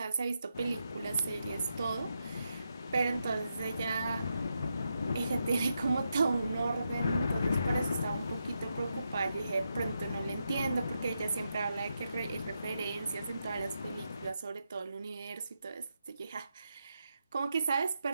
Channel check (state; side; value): inverted; both; correlation -0.85